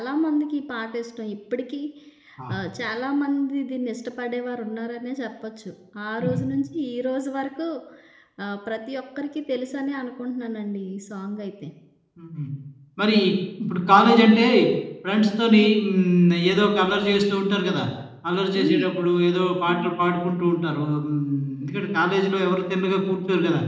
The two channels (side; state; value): both; identical; correlation 1.00